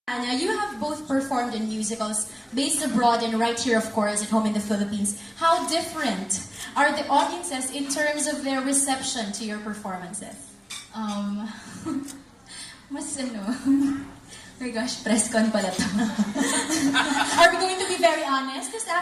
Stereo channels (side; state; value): both; identical; correlation 1.00